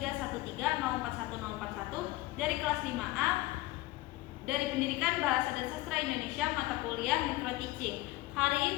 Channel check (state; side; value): quieter; right; 18.6 dB